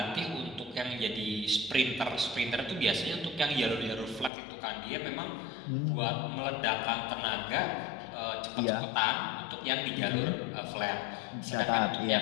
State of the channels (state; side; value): drops out; right; at 4.3 s